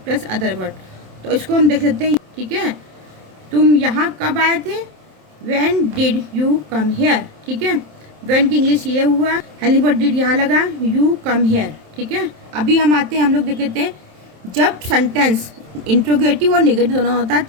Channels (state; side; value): late; left; 27 ms